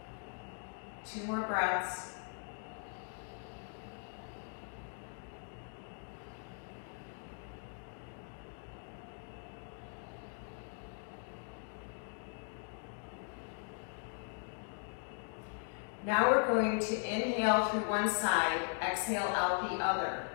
Two more breaths. Now we're going to inhale through one side, exhale out the other.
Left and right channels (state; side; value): silent; right; 52 dB below the other